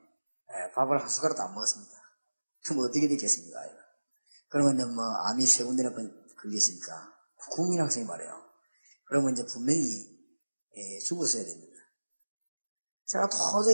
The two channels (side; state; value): both; inverted; correlation -1.00